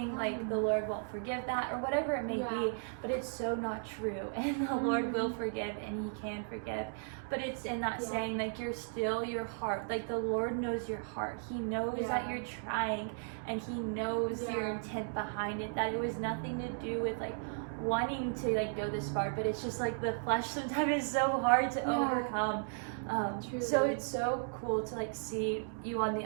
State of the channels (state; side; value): silent; left; digital silence